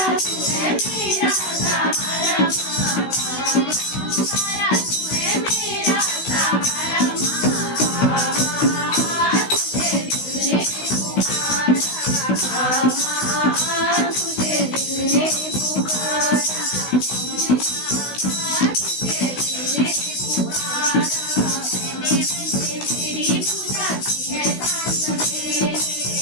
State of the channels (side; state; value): right; late; 16 ms